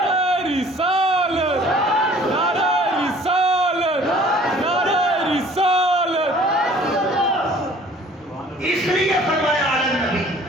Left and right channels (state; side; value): normal; both; correlation 0.52